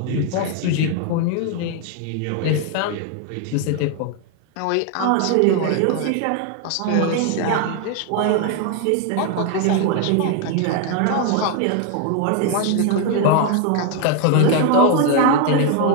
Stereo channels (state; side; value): different; both; correlation 0.01